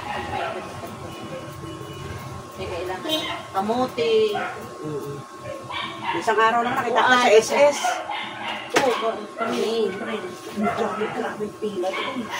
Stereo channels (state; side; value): identical; both; correlation 1.00